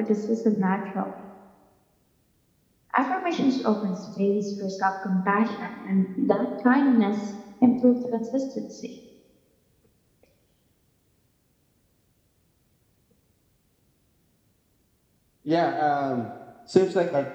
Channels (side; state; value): both; identical; correlation 1.00